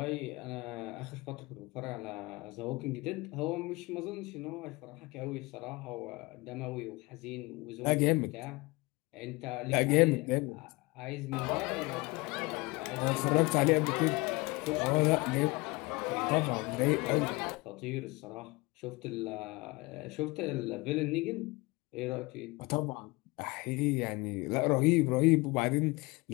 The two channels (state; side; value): quieter; right; 24.4 dB